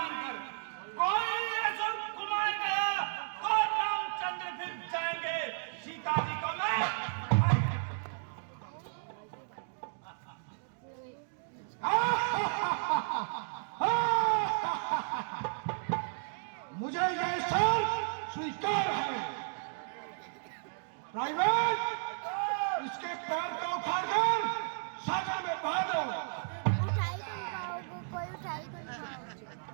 कोई असुर कुमार गया तो रामचंद्र फिर जाएंगे, सीता जी को मैं मुझे यह सर स्वीकार है। प्राइवेट, इसके पैर को उखाड़कर सागर में बहा दो। उठाई तो खाओगे, कोई उठाई तो खाओगे।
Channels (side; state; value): left; silent; digital silence